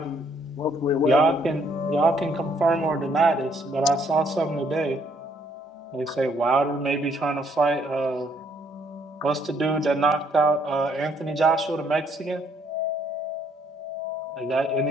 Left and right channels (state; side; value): normal; both; correlation 0.68